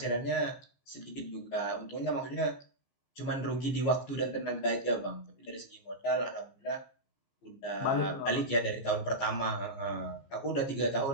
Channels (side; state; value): right; late; 15 ms